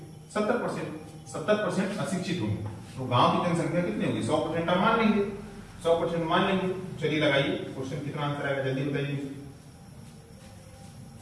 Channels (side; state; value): both; identical; correlation 1.00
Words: 70%। 70% अशिक्षित होंगे तो गांव की जनसंख्या कितनी होगी, 100% आप मान लेंगे, 100% मान लेंगे। चलिए लगाइए क्वेश्चन, कितना आंसर आएगा जल्दी बताइए,